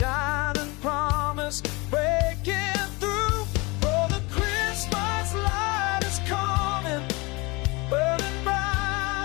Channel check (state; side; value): quieter; right; 25.7 dB